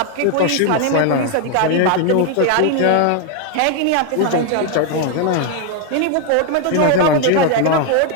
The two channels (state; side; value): different; both; correlation 0.00